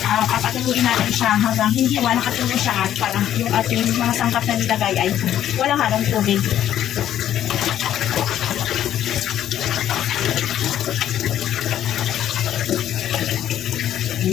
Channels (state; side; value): quieter; right; 11.3 dB